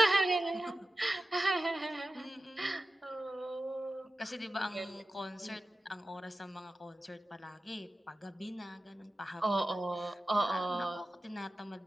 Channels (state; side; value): normal; both; correlation 0.94